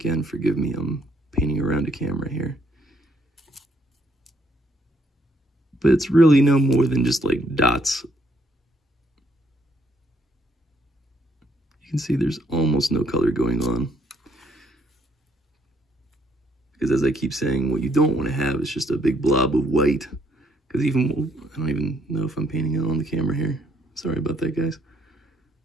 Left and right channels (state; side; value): normal; both; correlation 0.70